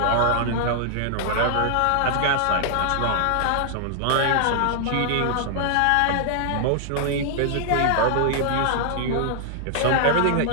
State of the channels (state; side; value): different; both; correlation -0.01